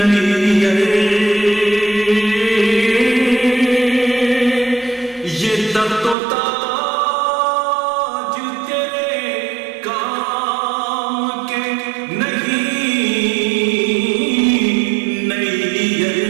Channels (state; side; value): drops out; left; at 6.2 s